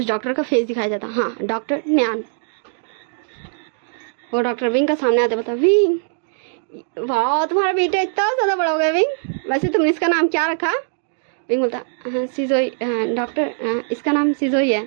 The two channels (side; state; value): left; silent; digital silence